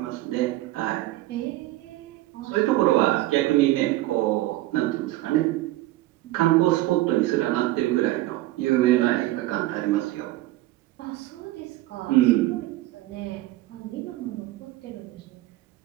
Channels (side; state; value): left; quieter; 16.9 dB